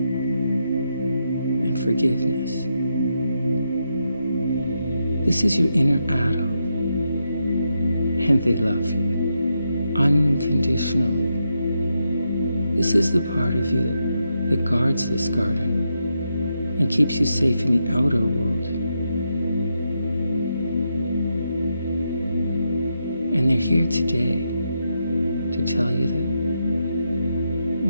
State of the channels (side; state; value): both; inverted; correlation -0.83